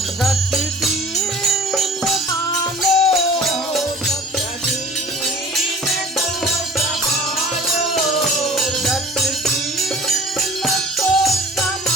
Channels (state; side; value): normal; both; correlation 0.45